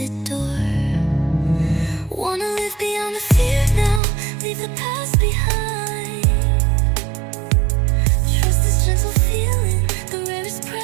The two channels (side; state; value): left; drops out; at 4.0 s